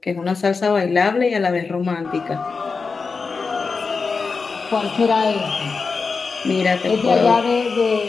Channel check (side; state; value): right; quieter; 4.7 dB